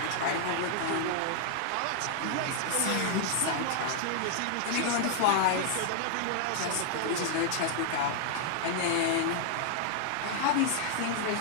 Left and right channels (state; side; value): different; both; correlation 0.00